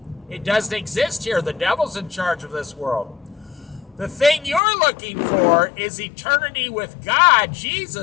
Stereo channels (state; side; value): drops out; right; at 4.6 s